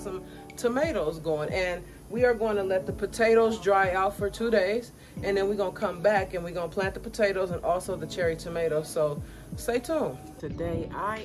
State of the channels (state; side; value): identical; both; correlation 1.00